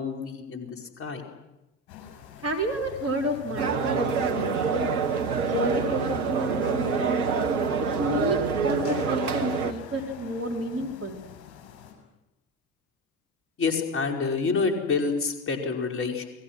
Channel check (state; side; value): normal; both; correlation 0.21